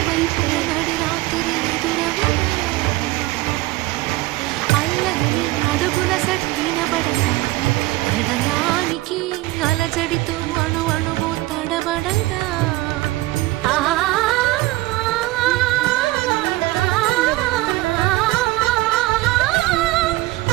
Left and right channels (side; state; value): left; quieter; 19.2 dB